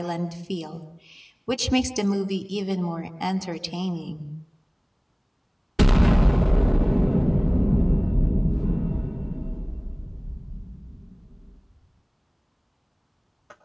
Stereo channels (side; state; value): both; identical; correlation 1.00